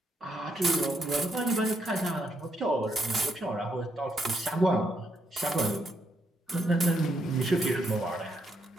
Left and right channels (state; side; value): normal; both; correlation 0.76